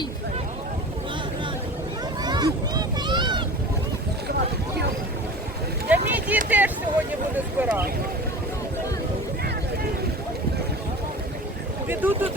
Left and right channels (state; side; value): normal; both; correlation 0.36